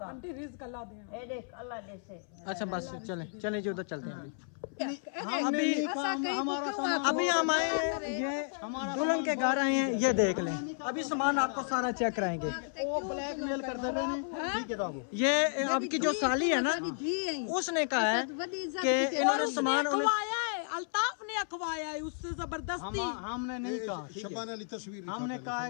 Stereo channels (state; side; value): silent; right; 56 dB below the other